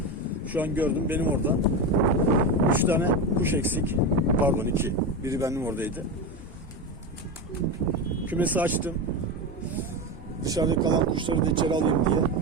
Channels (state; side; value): normal; both; correlation 0.18